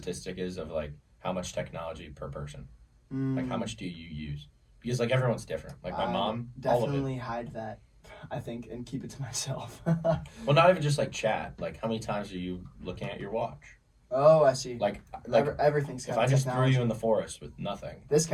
is of, like, how much technology per person. Like, how much do you use? Because, like, everyone's different. Like, my mom, definitely hide that, I think, and keep it to myself. Well, not even just, like, chat. Like, how many times are you looking at your watch? Oh, I see. Like everything's got if I just threw you in the forest with nothing. This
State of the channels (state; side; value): identical; both; correlation 1.00